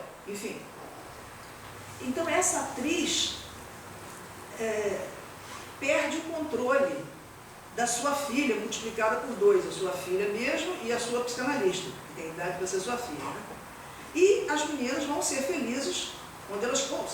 enfim. Então essa atriz perde o controle da sua filha, multiplicada por 2, a sua filha mesmo e a sua psicanalista, que tem idade para ser sua filha. Né? E as meninas vão ser felizes onde elas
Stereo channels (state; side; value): identical; both; correlation 1.00